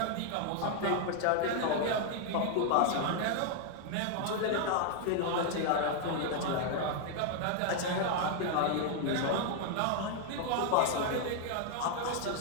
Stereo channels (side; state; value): both; different; correlation 0.00